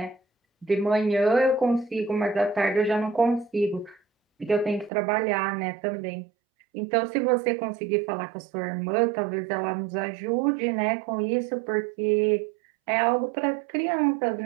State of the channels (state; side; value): drops out; left; at 4.9 s